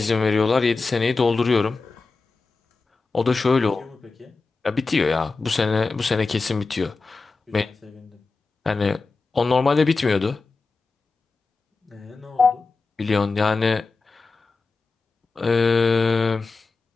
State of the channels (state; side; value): quieter; right; 4.0 dB